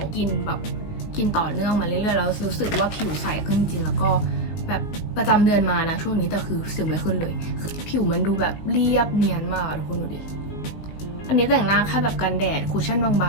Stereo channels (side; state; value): right; late; 19 ms